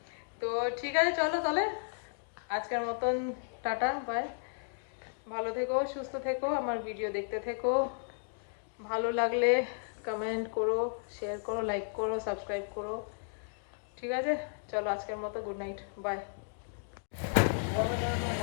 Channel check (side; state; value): right; silent; digital silence